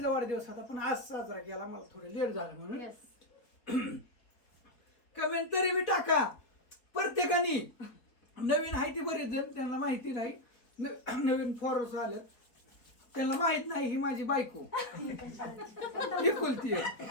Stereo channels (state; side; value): late; right; 4.1 ms